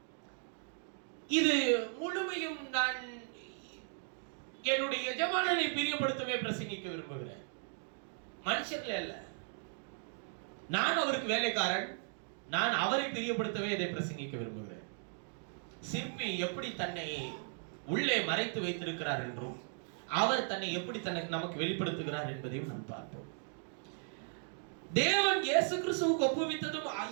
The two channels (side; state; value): left; silent; 53 dB below the other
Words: இது முழுமையும் நான் என்னுடைய எஜமானனை பிரியப்படுத்தவே பிரசங்கிக்க விரும்புகிறேன். மனுஷர்களே அல்ல, நான் அவருக்கு வேலைக்காரன், நான் அவரை பிரியப்படுத்தவே இதை பிரசங்கிக்க விரும்புகிறேன். சிற்பி எப்படி தன்னை உள்ளே மறைத்து வைத்திருக்கிறார் என்றும், அவர் தன்னை எப்படி நமக்கு வெளிப்படுத்துகிறார் என்பதையும் நாம் பார்ப்போம். தேவன் இயேசு கிறிஸ்துவுக்கு ஒப்புவித்ததும்